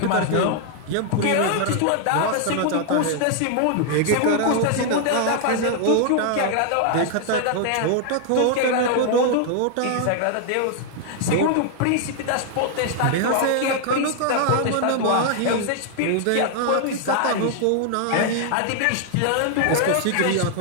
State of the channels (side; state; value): both; different; correlation 0.00